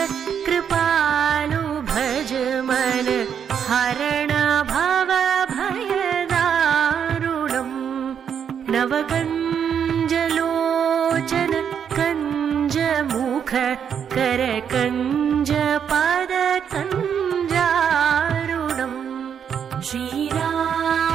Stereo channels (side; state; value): left; quieter; 7.9 dB